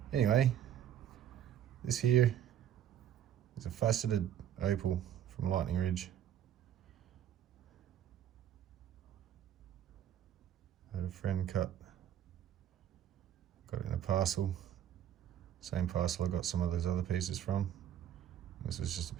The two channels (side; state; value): left; quieter; 10.4 dB